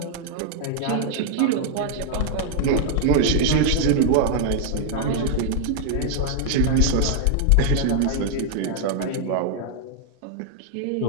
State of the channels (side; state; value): both; different; correlation 0.00